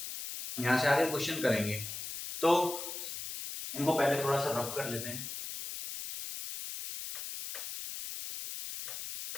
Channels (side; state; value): left; noise; hiss, 7 dB below the sound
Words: तो इनको पहले थोड़ा सा रफ कर लेते हैं।